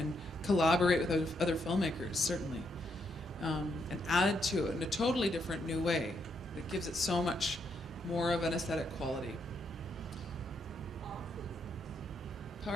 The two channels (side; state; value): both; normal; correlation 0.77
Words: collaborate with other filmmakers, certainly, and add to it in a totally different new way that gives it so much more of an aesthetic quality.